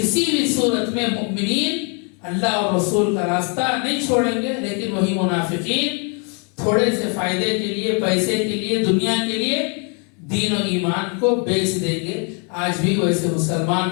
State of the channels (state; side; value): quieter; right; 37.4 dB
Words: بھی صورت میں مومنین اللہ اور رسول کا راستہ نہیں چھوڑیں گے، لیکن وہی منافقین تھوڑے سے فائدے کے لیے، پیسے کے لیے، دنیا کے لیے دین و ایمان کو بیچ دیں گے. آج بھی ویسے